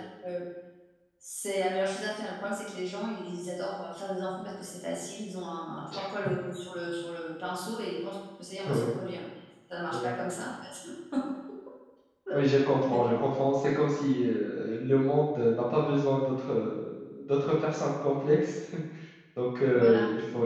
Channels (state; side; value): identical; both; correlation 1.00